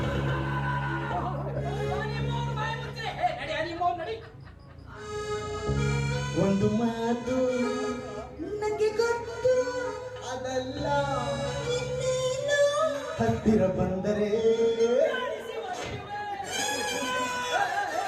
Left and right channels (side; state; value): both; identical; correlation 1.00